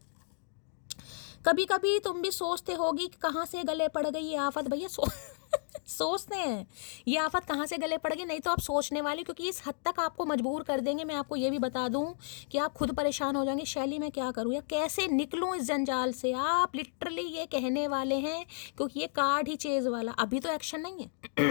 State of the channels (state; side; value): silent; right; digital silence